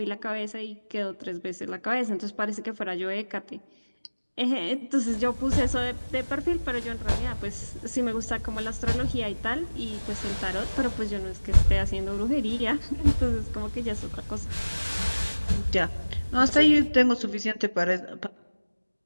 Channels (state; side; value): inverted; both; correlation -1.00